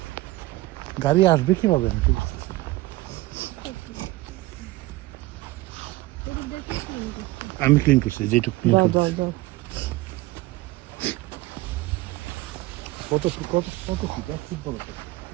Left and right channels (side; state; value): left; quieter; 18.8 dB